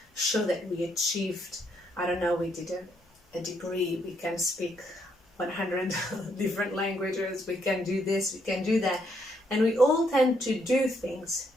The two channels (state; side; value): normal; both; correlation 0.74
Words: show that we achieved, I don't know, we did a degree, we can speak 100 different languages, we can do this, we can do that, and we all tend to do things